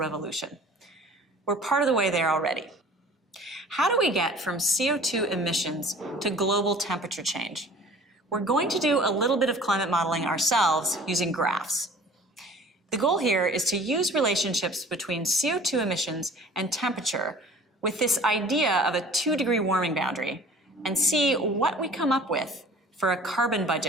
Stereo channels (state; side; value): normal; both; correlation 0.47